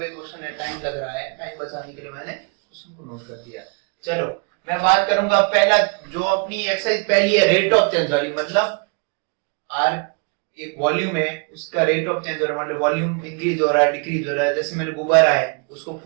क्वेश्चन है, टाइम लग रहा है, टाइम बचाने के लिए मैंने क्वेश्चन को नोट कर दिया। चलो मैं बात करूंगा पहला, जो अपनी एक्सरसाइज पहली है रेट ऑफ चेंज वाली, मतलब आर एक वॉल्यूम है, उसका रेट ऑफ चेंज हो रहा है, मतलब वॉल्यूम इंक्रीज हो रहा है डिक्रीज हो रहा है। जैसे मैंने गुब्बारा है उसको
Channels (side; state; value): left; quieter; 36.1 dB